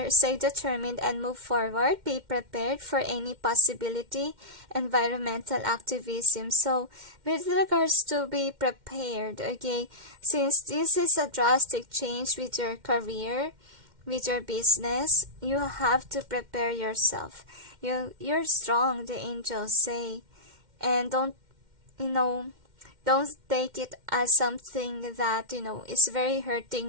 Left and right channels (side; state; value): left; late; 2.1 ms